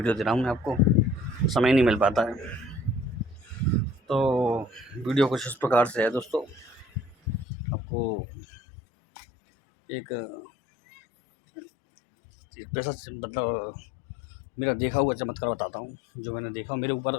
दे रहा हूँ मैं आपको, समय नहीं मिल पाता है। तो वीडियो कुछ इस प्रकार से है दोस्तों, आपको एक पैसा मतलब मेरा देखा हुआ चमत्कार बताता हूँ। जो मैंने देखा मेरे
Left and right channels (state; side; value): drops out; right; at 7.5 s